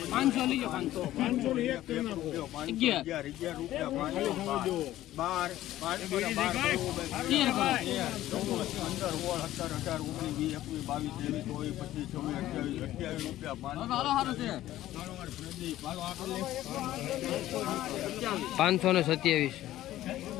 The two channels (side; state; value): right; quieter; 14.3 dB